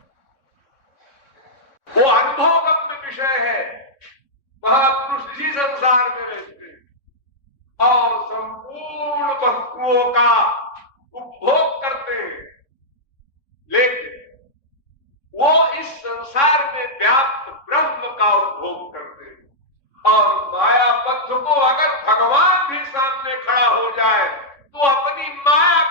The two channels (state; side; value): late; right; 3.6 ms